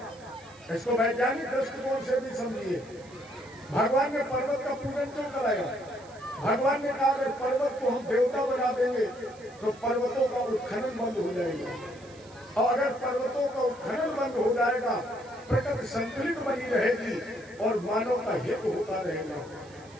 इसको वैज्ञानिक दृष्टिकोण से भी समझिए, भगवान ने पर्वत का पूजन क्यों कराया? भगवान ने कहा अगर पर्वत को हम देवता बना देंगे तो पर्वतों का उत्खनन बंद हो जाएगा, और अगर पर्वतों का उत्खनन बंद हो जाएगा प्रकृति संतुलित बनी रहेगी और मानव का हित होता रहेगा।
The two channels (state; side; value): noise; right; hiss, 25 dB below the sound